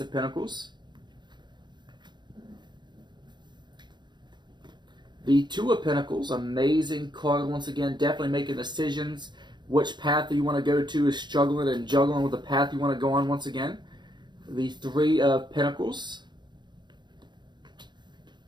of Pentacles. The Two of Pentacles. Amazing card once again. Definitely making decisions. Which path you want to go to is struggling and juggling with the path you want to go on once again. The Three of Pentacles.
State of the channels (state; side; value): late; left; 0.21 ms